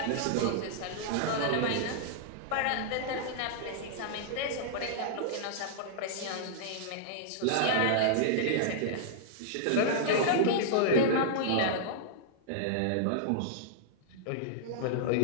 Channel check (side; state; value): both; different; correlation -0.02